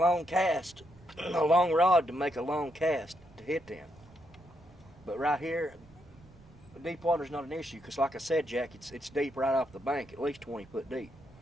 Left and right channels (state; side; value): noise; right; rumble, 24 dB below the sound